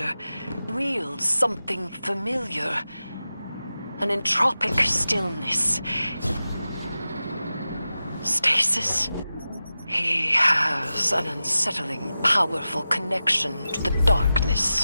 wields something familiar. An entropic stillness. Stasis? He has an unsettling, powerful connection to the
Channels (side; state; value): both; inverted; correlation -0.93